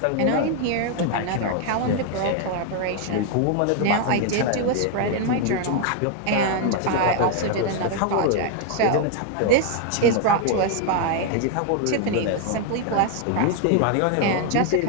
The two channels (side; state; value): both; different; correlation 0.00